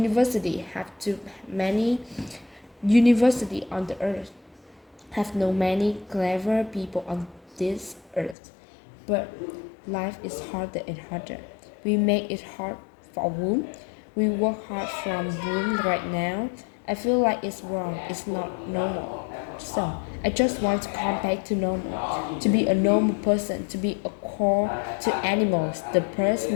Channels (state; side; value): drops out; right; at 8.3 s